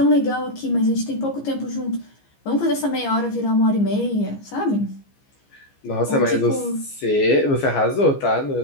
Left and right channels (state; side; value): late; right; 15 ms